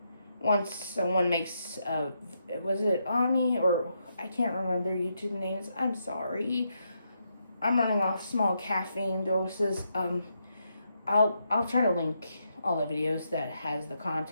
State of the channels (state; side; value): inverted; both; correlation -0.80